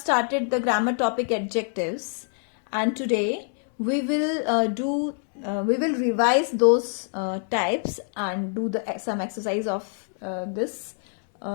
the grammar topic adjectives, and today we will revise those types and do some exercise of this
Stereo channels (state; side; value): silent; right; 56 dB below the other